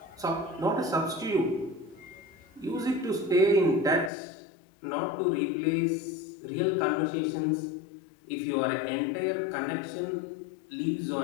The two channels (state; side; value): drops out; right; at 4.1 s